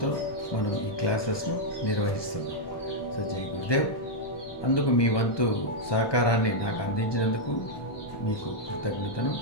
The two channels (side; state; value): right; late; 1.2 ms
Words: మనం ఈ క్లాసెస్ను నిర్వహిస్తున్నాం. సో జై గురుదేవ్. అందుకు మీ వంతు సహకారాన్ని నాకు అందించినందుకు మీకు కృతజ్ఞతను.